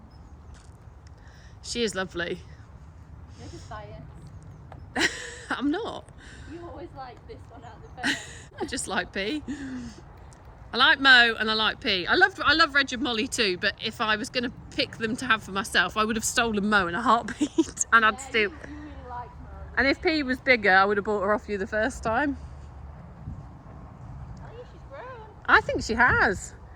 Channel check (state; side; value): identical; both; correlation 1.00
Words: She is lovely. You're just biased. I'm not. You always like this one out of the pair. I just like P. I like Mo and I like P. I love Reg and Molly too, but if I was going to pick them to have for myself, I would have stolen Mo in a heartbeat. And I'd still... You really like Mo. And if P was bigger, I would have bought her off you the first time. I think she has.